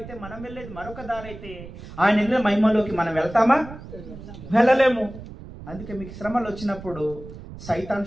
మనం వెళ్ళేది మరొక దారి అయితే ఆయన వెళ్ళిన మహిమలోకి మనం వెళ్తామా? వెళ్ళలేము. అందుకే మీకు శ్రమలు వచ్చినప్పుడు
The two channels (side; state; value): right; noise; rumble, 14 dB below the sound